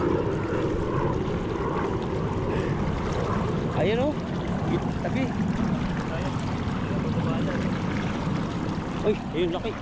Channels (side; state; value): both; identical; correlation 1.00